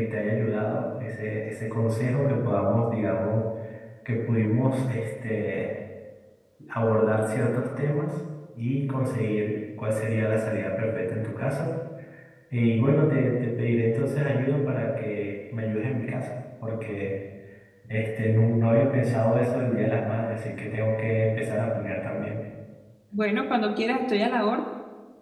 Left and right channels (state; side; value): identical; both; correlation 1.00